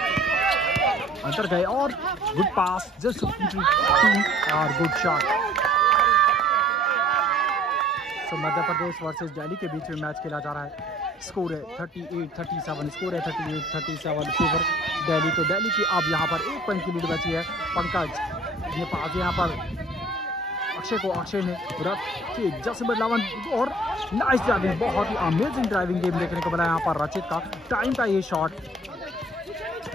अंदर गए और गुड पास जस्ट और गुड शॉट। तो मध्य प्रदेश वर्सेस दिल्ली के बीच में मैच खेला जा रहा है। स्कोर है 38-37, स्कोर है 38-37 फेवर दिल्ली। तो दिल्ली की अब यहाँ पर 1 पॉइंट की लीड बची है। पंकज ये पास यहाँ पर अक्षय को, अक्षय ने रचित जसीम बदलावन और नाइस ड्राइविंग, बहुत ही अमेजिंग ड्राइविंग गेम देखने को मिला यहाँ पर रचित का। टाइम का ये शॉट,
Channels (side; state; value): both; normal; correlation 0.52